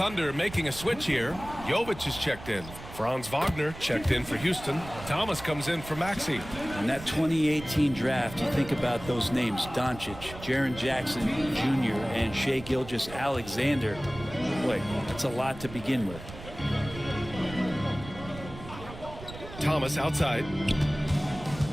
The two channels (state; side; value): noise; right; rumble, 14 dB below the sound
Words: making a switch here. Jovic is checked in. Franz Wagner checked in for Houston. Thomas comes in for Maxey. In that 2018 draft, you think about those names: Doncic, Jaren Jackson Jr., and Shai Gilgeous-Alexander. Boy, that's a lot to begin with. Thomas outside.